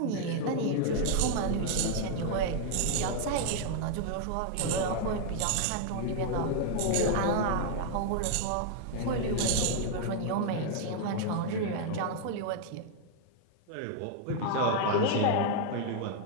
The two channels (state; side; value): different; both; correlation 0.00